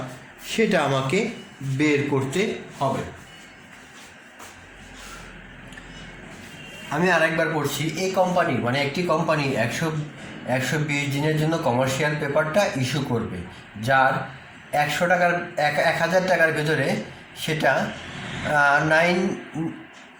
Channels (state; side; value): identical; both; correlation 1.00